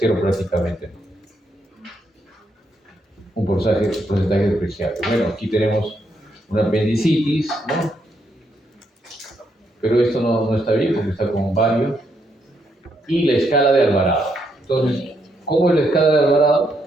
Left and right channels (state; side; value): normal; both; correlation 0.77